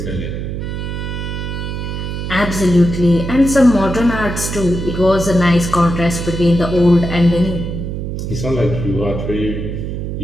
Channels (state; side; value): noise; right; hum, 4 dB below the sound